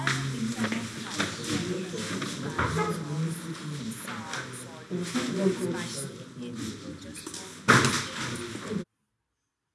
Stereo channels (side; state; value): both; identical; correlation 1.00